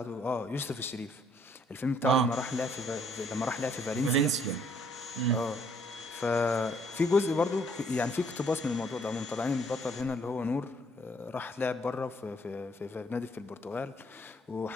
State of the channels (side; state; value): both; normal; correlation 0.66